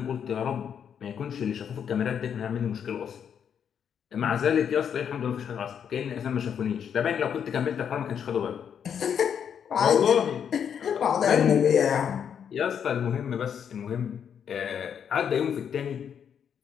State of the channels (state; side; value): quieter; right; 8.0 dB